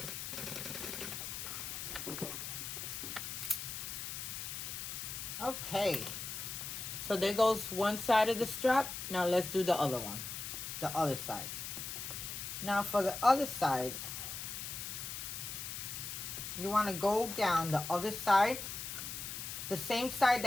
Okay, so there goes one side of the strap. Now let's do the other one, the other side. Now for the other side, you want to go down the other side. The same side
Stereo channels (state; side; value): noise; left; hiss, 6 dB below the sound